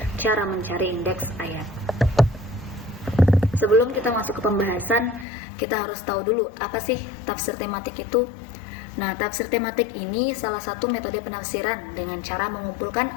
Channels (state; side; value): drops out; right; at 5.2 s